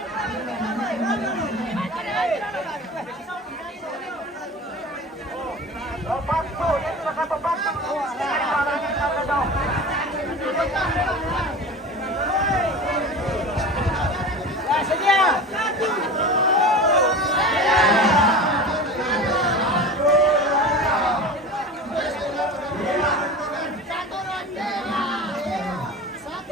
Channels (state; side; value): normal; both; correlation 0.33